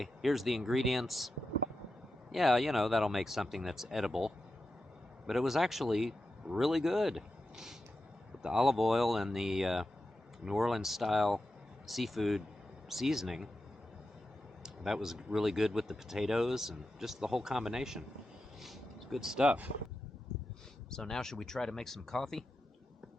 here's the ingredients. Yeah, you know, that'll make something that's edible. But it was actually really good. With the olive oil and the New Orleans style seafood seasoning, that was really good with the potatoes and just the whole combination. It's good stuff. So now should we try to make some coffee?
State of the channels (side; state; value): both; normal; correlation 0.90